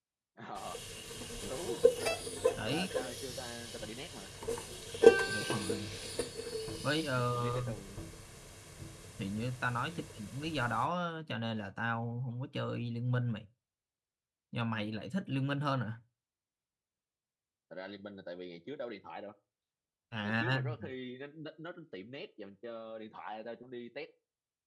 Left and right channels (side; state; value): both; identical; correlation 1.00